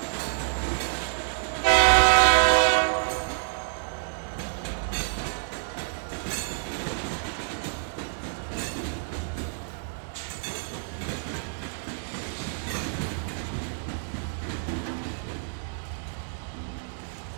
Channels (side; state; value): left; silent; digital silence